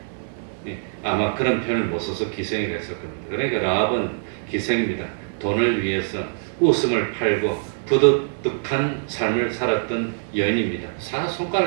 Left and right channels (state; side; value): silent; left; digital silence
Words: 아마 그런 표현을 못 써서 기생이라 했을 겁니다. 그러니까 라합은 기생입니다. 돈을 위해서 웃음을 팔고 부득득한 삶을 살았던 여인입니다.